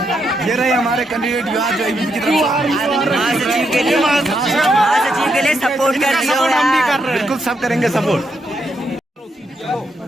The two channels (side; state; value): both; normal; correlation 0.79